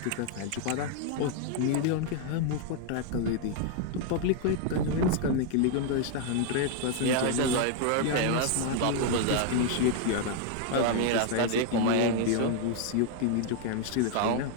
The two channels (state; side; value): different; both; correlation 0.00